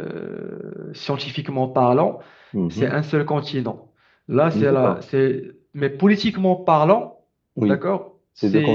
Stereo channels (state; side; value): identical; both; correlation 1.00